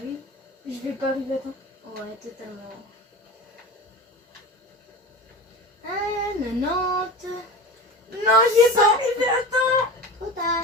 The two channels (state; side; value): normal; both; correlation 0.30